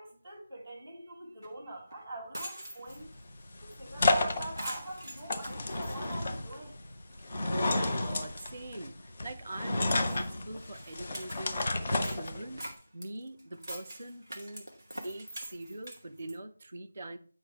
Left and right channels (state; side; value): inverted; both; correlation -0.85